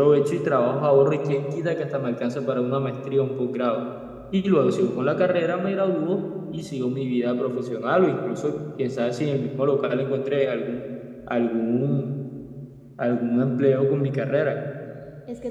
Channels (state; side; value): identical; both; correlation 1.00